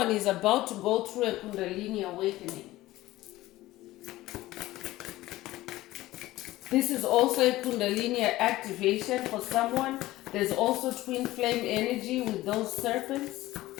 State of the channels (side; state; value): right; quieter; 16.9 dB